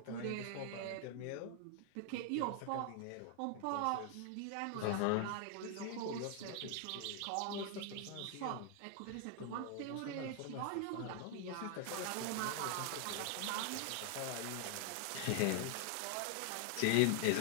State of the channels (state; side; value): different; both; correlation 0.00